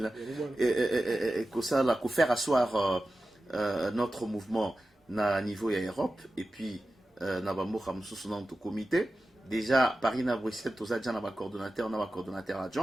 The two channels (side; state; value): both; normal; correlation 0.94